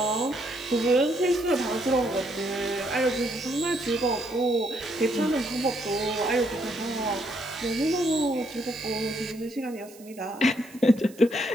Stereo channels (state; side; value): noise; right; hiss, 22 dB below the sound